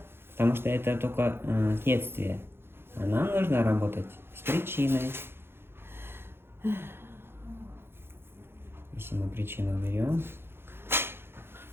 потому что это только следствие. А нам нужно работать с причиной. Если мы причину берем,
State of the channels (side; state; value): left; late; 0.11 ms